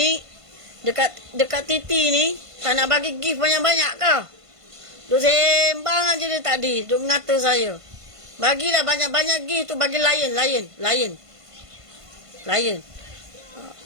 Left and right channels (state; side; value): late; left; 1.5 ms